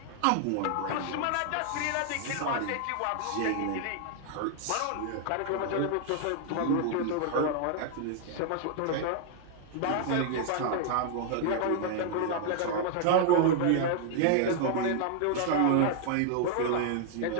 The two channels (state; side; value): different; both; correlation 0.00